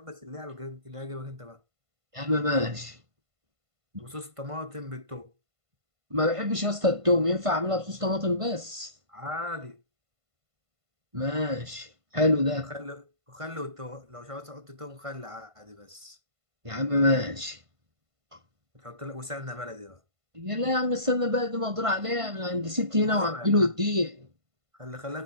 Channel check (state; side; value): late; left; 1.5 ms